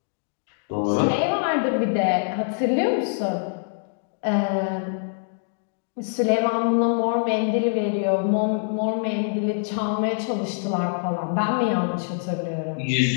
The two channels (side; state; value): right; silent; digital silence